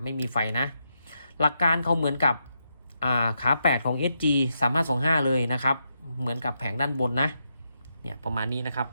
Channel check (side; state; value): both; inverted; correlation -0.83